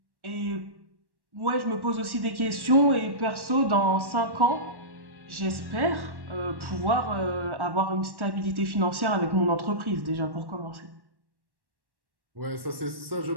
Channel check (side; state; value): left; late; 1.1 ms